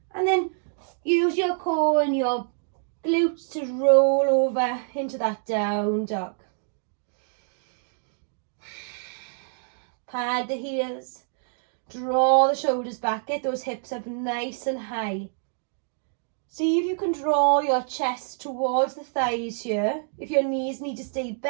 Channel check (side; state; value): left; silent; digital silence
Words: And then use your core and your glutes to roll over into that down dog. Pad the heels. Draw the shoulders back. Get those hips up nice and high. See if you can draw your chest towards the thighs here. If your knees need to stay